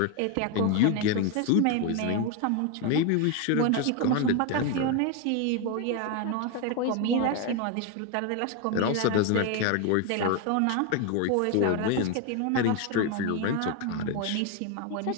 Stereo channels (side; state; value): both; different; correlation 0.01